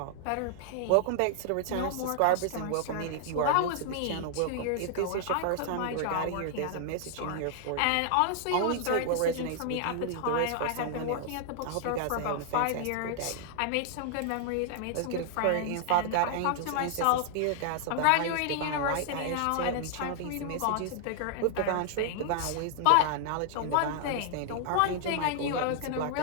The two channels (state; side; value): different; both; correlation 0.00